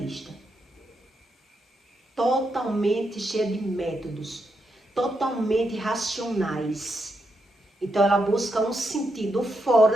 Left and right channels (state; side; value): normal; both; correlation 0.83